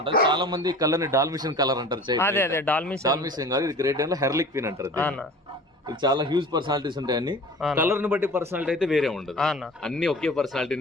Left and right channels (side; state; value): both; normal; correlation 0.41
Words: చాలా మంది కలర్ ని డాల్మిషన్ కలర్ అంటారు. అదే అదే డాల్మిషన్ కాదు, ఇది గ్రేట్ డేన్ లో హెర్లిక్ క్వీన్ అంటారు. ఇది చాలా హ్యూజ్ పర్సనాలిటీస్ ఉంటాయి. అన్ని కలర్ ని బట్టి పర్సనాలిటీ అయితే వేరే ఉండదు, అన్ని ఒకే